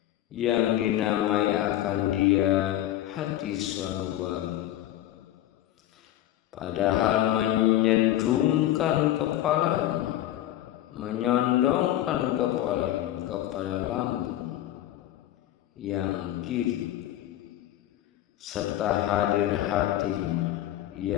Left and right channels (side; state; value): right; quieter; 13.5 dB